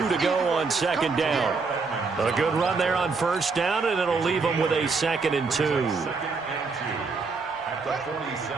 to go on 2nd down. A good run there on 1st down, and it'll leave them with a 2nd and 2.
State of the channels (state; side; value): quieter; left; 4.5 dB